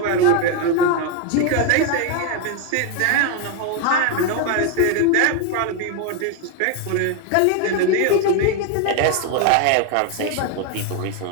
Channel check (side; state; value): both; different; correlation 0.01